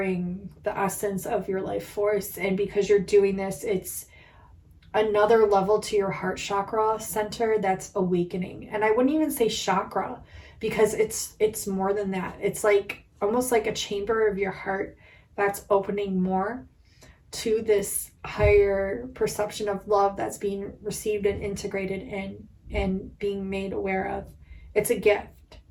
the essence of your life force. And because you're doing this, it's another level to your heart chakra center that's awakening. And I wouldn't even say chakra, because it's more than that. It's like almost like a chamber of your heart that's opening more to this higher perception of love that's being received and integrated in and being made aware of. It's a gift,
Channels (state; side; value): identical; both; correlation 1.00